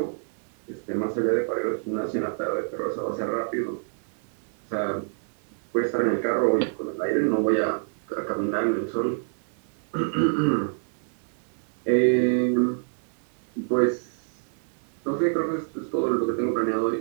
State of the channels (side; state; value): left; silent; 60 dB below the other